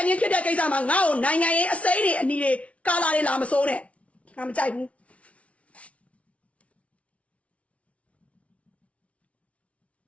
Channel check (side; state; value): right; late; 0.064 ms